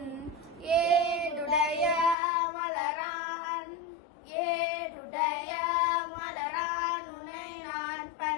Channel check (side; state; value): right; drops out; at 2.1 s